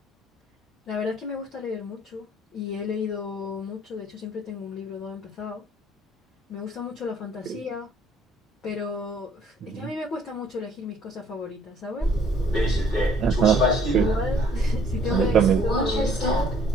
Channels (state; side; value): normal; both; correlation 0.60